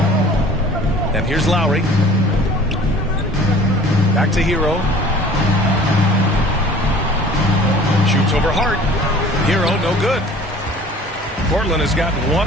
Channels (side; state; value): both; normal; correlation 0.48